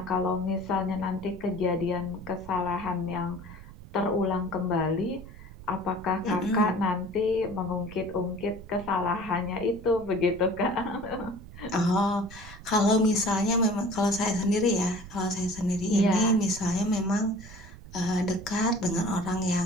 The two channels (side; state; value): right; noise; rumble, 16 dB below the sound